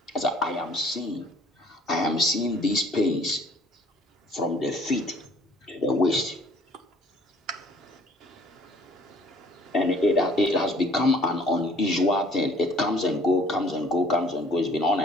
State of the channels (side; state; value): both; normal; correlation 0.56